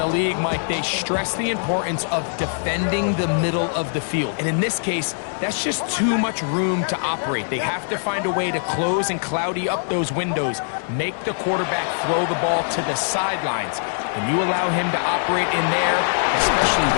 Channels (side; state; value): right; silent; digital silence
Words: league, Mike, they stress the importance of defending the middle of the field. And in this case, that's just too much room to operate. They have to find a way to close and cloudy up those windows, make the quarterback throw the ball to the sidelines. When you allow him to operate in there, especially